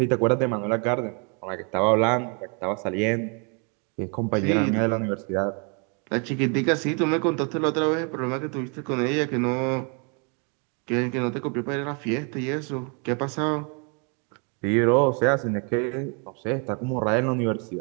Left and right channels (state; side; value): quieter; left; 36.6 dB